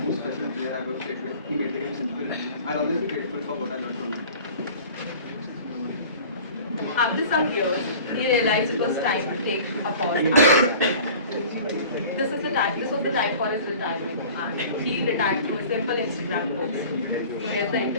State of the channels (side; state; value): both; inverted; correlation -0.43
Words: special players I ever played with. He made the game simple. I'll always be grateful for what I learned from him. After some years, he realized it was time to take a pause. This was the time for his retirement, and he retired through a simple Instagram post. So here's the